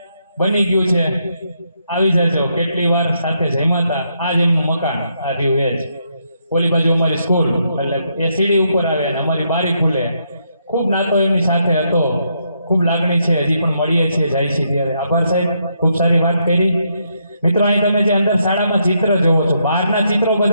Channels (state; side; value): inverted; both; correlation -0.77